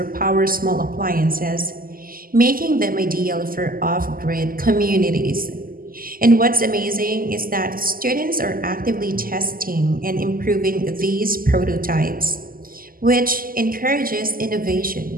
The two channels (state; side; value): late; left; 0.42 ms